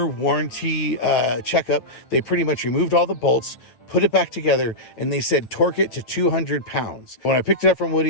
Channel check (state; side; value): late; right; 8.8 ms